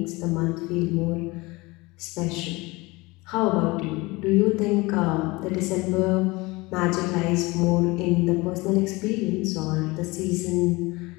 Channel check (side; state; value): right; quieter; 23.3 dB